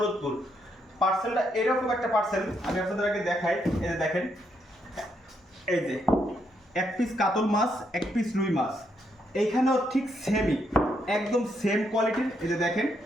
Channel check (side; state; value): both; normal; correlation 0.77